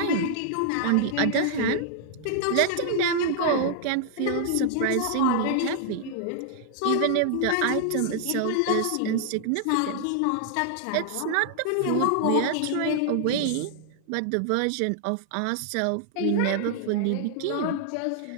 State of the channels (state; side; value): different; both; correlation -0.01